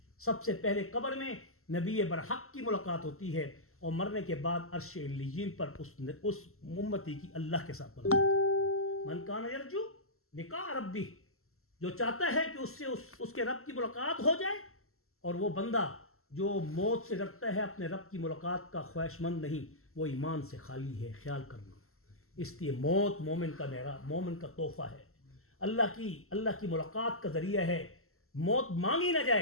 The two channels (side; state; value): right; late; 0.62 ms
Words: سب سے پہلے قبر میں نبی برحق کی ملاقات ہوتی ہے, اور مرنے کے بعد عرش علیین پر اس امتی کی اللہ کے ساتھ ملاقات ہوتی ہے. من کان یرجو لقاء ربی, جو چاہتا ہے کہ اس سے اس کے رب کی ملاقات ہو جائے, اور وہ بندہ جو موت سے ڈرتا ہے اپنے رب کی ملاقات کا خواہش مند نہیں, وہ ایمان سے خالی ہے. خیال کرنا, اس لیے موت مومن کا تحفہ ہے, اللہ کی ملاقات کا ذریعہ ہے. موت مانگی نہ